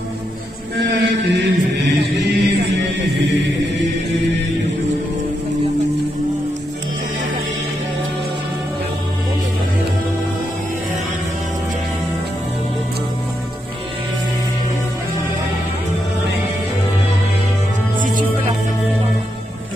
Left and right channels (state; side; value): normal; both; correlation 0.82